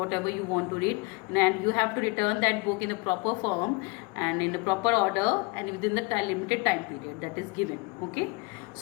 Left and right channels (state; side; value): quieter; right; 28.0 dB